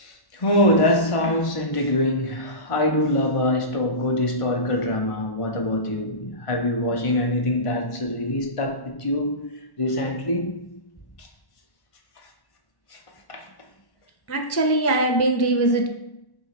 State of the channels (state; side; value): late; right; 1.1 ms